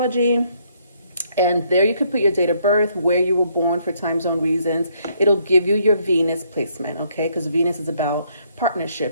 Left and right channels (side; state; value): both; inverted; correlation -0.69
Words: And there you can put your date of birth, where you were born for time zone reasons. It'll give you your Venus placement, okay? Because Venus is about